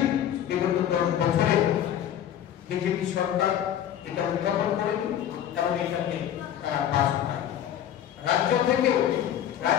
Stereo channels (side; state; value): right; quieter; 10.5 dB